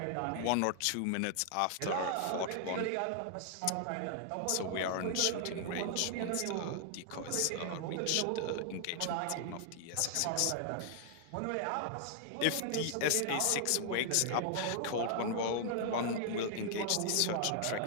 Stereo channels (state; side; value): different; both; correlation 0.00